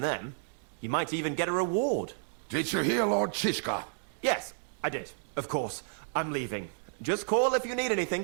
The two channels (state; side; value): silent; left; 57 dB below the other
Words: them. You might even get a reward. Did you hear Lord Shishka? Yes, I did. Of course. I'm leaving. Just call if you need